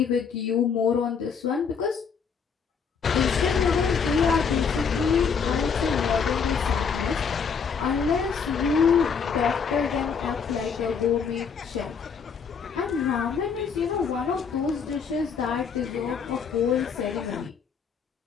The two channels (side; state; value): right; quieter; 6.2 dB